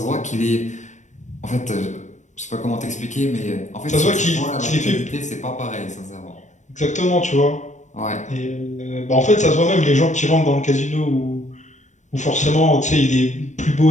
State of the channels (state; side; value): late; right; 0.35 ms